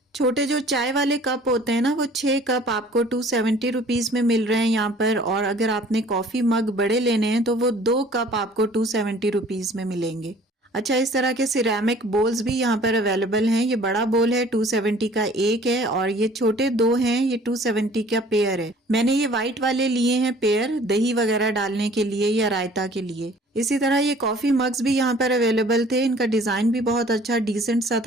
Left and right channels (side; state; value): both; normal; correlation 0.52